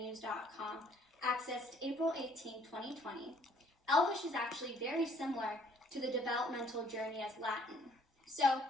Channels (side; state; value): both; normal; correlation 0.61